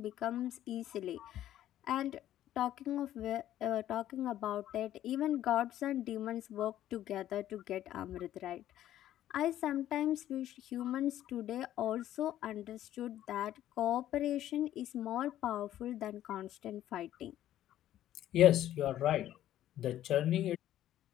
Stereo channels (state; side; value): quieter; right; 12.6 dB